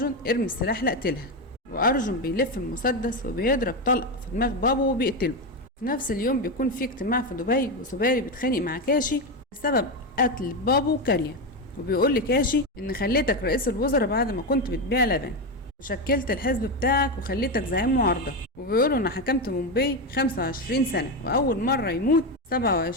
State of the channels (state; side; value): normal; both; correlation 0.12